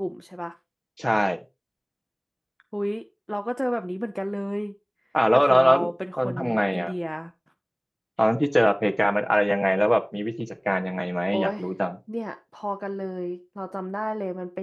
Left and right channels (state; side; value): identical; both; correlation 1.00